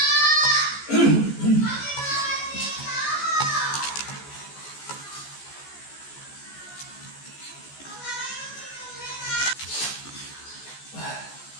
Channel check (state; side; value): late; right; 14 ms